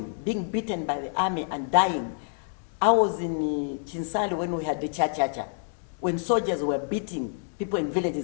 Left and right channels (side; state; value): right; silent; digital silence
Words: being beaten by the army and dying. I was in Chinsali when we had the cha-cha-cha, when soldiers were beating people in